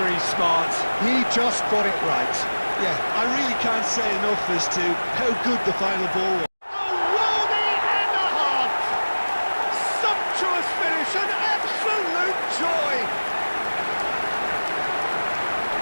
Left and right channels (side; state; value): both; inverted; correlation -1.00